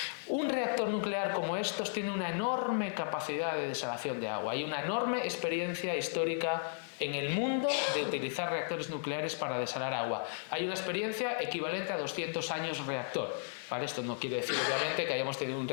Un reactor nuclear como estos tiene una enorme capacidad de desalación de agua. Hay una enorme experiencia histórica en el mundo de utilizar reactores nucleares para desalar agua. Hay una experiencia equivalente a 200 años reactor. ¿vale? Esto no quiere decir, obviamente, que hayamos tenido un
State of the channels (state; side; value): silent; right; 55 dB below the other